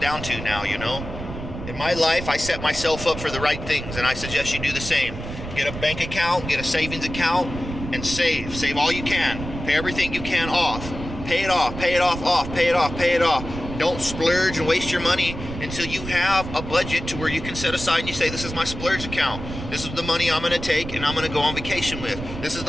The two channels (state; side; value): noise; right; rumble, 9 dB below the sound